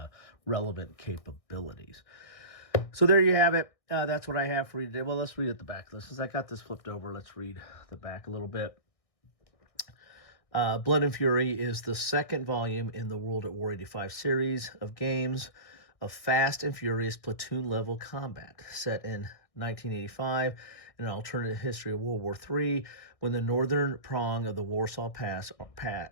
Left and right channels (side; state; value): right; late; 1.6 ms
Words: relevant capabilities. So there you have it. That's what I have for you today. Well, let's read at the back. Since I got this flipped over, let's read the back a little bit. Blood and Fury is the second volume in the World at War 85 series of games of fast and furious platoon-level combat set in 1985 in an alternate history of World War III, when the northern prong of the Warsaw Pass